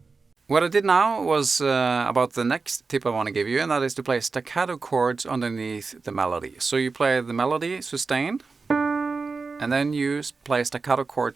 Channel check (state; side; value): quieter; left; 4.4 dB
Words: What I did now was about the next tip I want to give you, and that is to play staccato chords underneath the melody. So you play the melody sustained, and then you play staccato